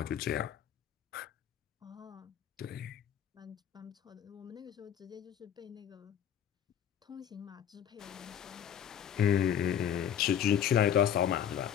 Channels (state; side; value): quieter; right; 9.4 dB